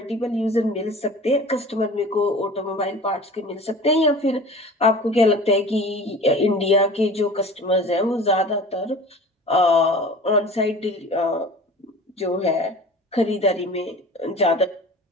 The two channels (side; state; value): both; normal; correlation 0.40